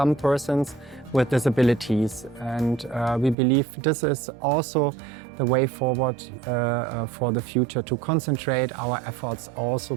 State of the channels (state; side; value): drops out; left; at 3.4 s